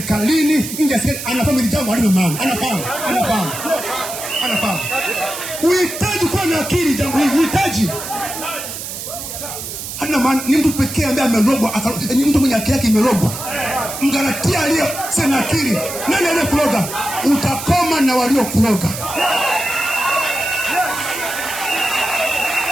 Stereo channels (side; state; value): right; noise; hiss, 8 dB below the sound